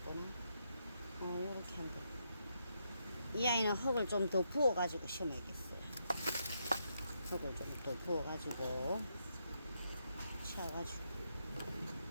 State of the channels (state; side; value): inverted; both; correlation -0.80